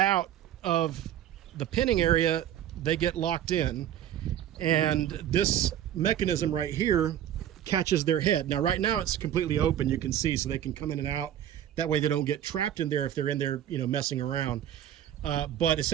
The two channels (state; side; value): quieter; left; 11.0 dB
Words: of the pinning area, they get locked in. And this mechanism right here catches their head. Now, right now it's completely open, you can see, so they can come in and out. That way they don't get trapped in there if they're in there, messing around. But